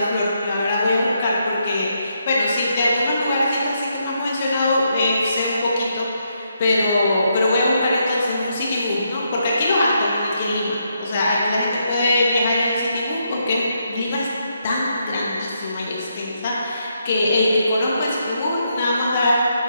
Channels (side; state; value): both; inverted; correlation -0.78